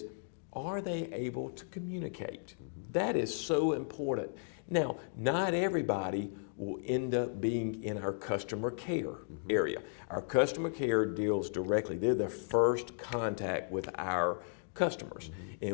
are they able to communicate? That is so important. Now, not everybody will end up being in our customer care area. Our customer care deals directly. They're the first contact with our customers.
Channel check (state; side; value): silent; right; digital silence